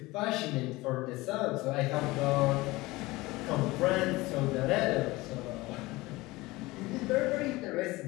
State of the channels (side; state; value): right; quieter; 20.7 dB